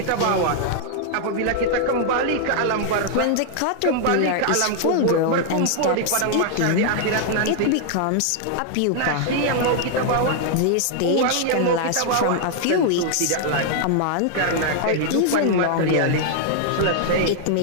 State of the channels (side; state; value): both; different; correlation 0.00